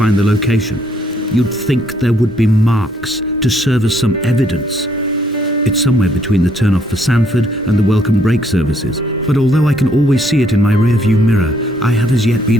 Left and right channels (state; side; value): normal; both; correlation 0.69